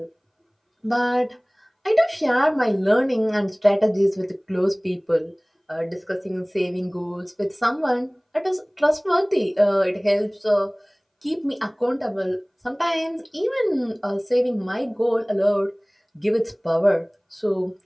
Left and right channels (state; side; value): identical; both; correlation 1.00